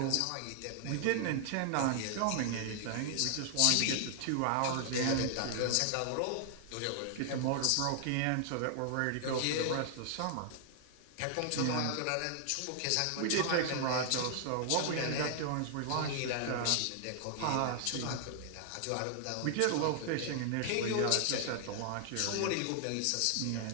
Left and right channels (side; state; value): both; different; correlation 0.00